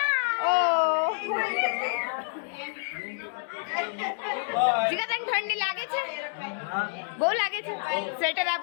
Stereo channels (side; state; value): right; silent; digital silence